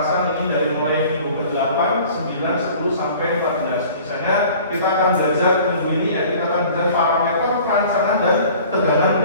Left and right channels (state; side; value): inverted; both; correlation -0.47